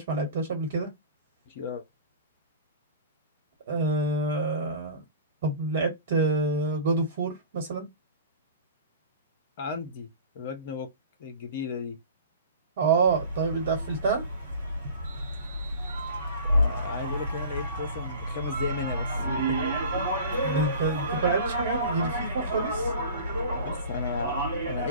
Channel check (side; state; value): both; inverted; correlation -0.41